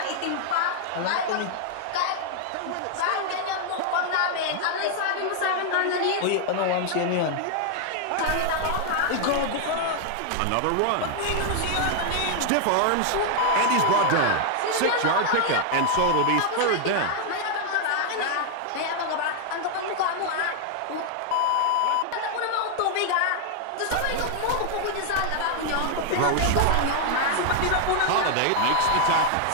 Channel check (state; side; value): different; both; correlation 0.00